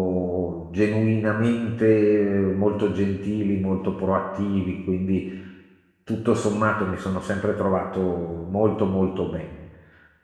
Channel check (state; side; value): identical; both; correlation 1.00